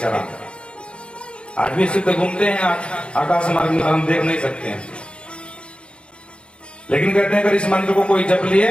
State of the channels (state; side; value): late; right; 0.057 ms